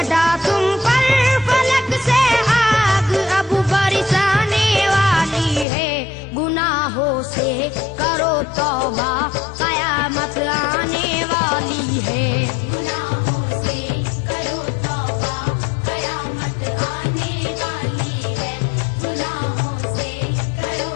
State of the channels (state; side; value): drops out; right; at 5.7 s